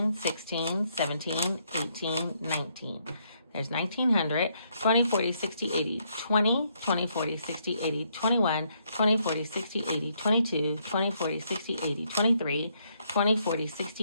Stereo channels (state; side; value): inverted; both; correlation -0.73